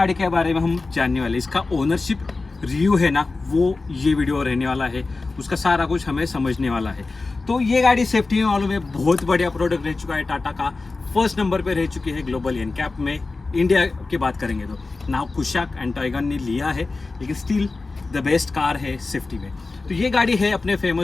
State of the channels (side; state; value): right; quieter; 3.7 dB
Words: के बारे में हम जानने वाले, इसका ओनरशिप रिव्यू है ना, वो ये वीडियो रहने वाला है। उसका सारा कुछ हमें समझने वाला है। तो ये गाड़ी सेफ्टी में मालूम है बहुत बढ़िया प्रोडक्ट रह चुका है। टाटा का फर्स्ट नंबर पे रह चुकी है ग्लोबल एनकैप में। इंडिया की बात करेंगे तो नाउ कुशाक एंड टाइगन ने लिया है, लेकिन स्टिल द बेस्ट कार है सेफ्टी में। तो ये गाड़ी है अपने